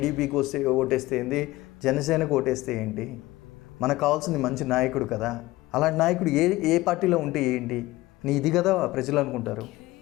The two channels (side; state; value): right; quieter; 18.6 dB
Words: ఓటేస్తే ఏంది, జనసేనకు ఓటేస్తే ఏంటి, మనకు కావాల్సింది మంచి నాయకుడు కదా. అలాంటి నాయకుడు ఏ పార్టీలో ఉంటే ఏంటి, ఇది కదా ప్రజలు అనుకుంటారు.